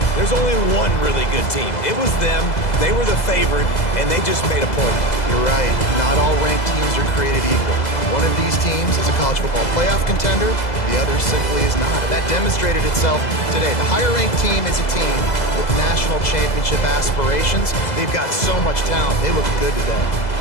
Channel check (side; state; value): right; late; 2.0 ms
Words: There's only one really good team. It was them. They were the favorite, and they just made a point of it. You're right. Not all ranked teams are created equal. One of these teams is a college football playoff contender. The other simply is not. And that demonstrated itself today. The higher-ranked team is a team with national championship aspirations. They've got so much talent. They look good today.